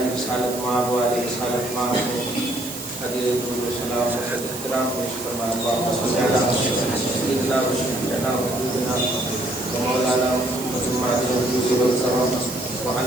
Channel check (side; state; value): right; noise; hiss, 10 dB below the sound